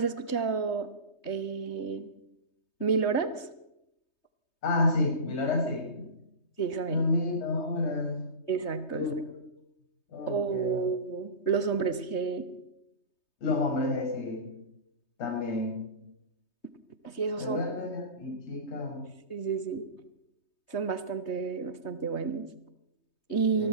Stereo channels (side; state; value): right; late; 3.2 ms